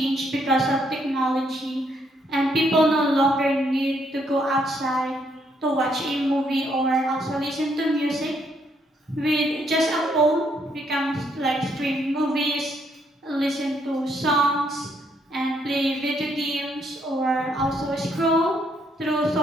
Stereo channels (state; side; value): normal; both; correlation 0.72